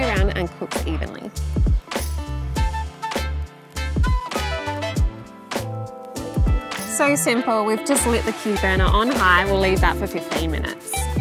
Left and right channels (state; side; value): identical; both; correlation 1.00